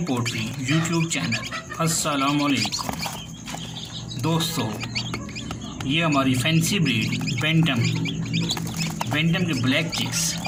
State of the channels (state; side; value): identical; both; correlation 1.00